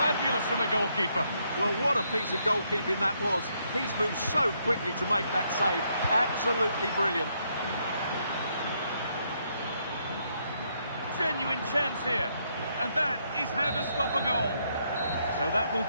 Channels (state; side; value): inverted; both; correlation -0.74